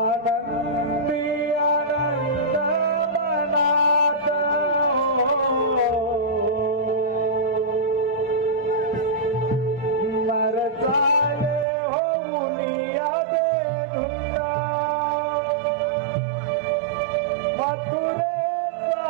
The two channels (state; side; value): drops out; left; at 11.7 s